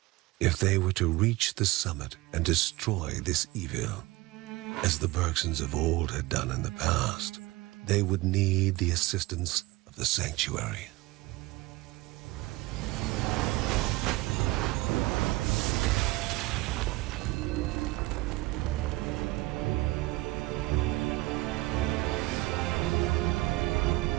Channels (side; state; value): left; quieter; 20.2 dB